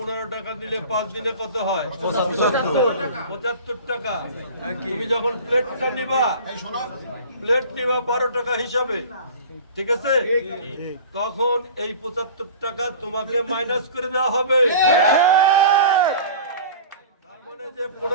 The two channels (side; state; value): both; inverted; correlation -0.39